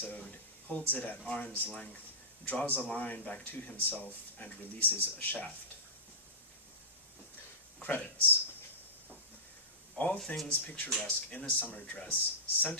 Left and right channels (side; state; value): both; normal; correlation -0.19